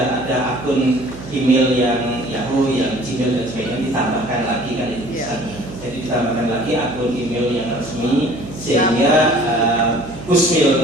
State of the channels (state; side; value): noise; right; hum, 14 dB below the sound